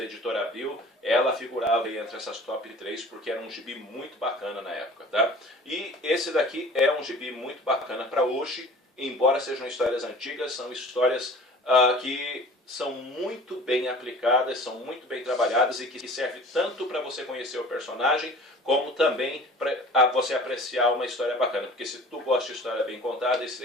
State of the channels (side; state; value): both; normal; correlation 0.44